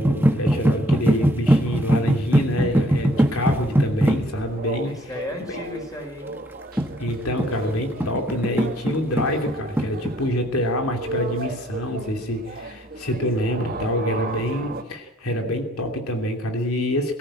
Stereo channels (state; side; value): normal; both; correlation 0.63